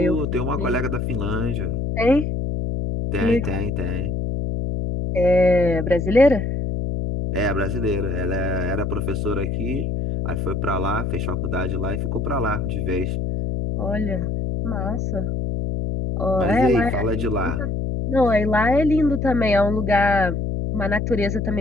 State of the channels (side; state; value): left; noise; hum, 1 dB below the sound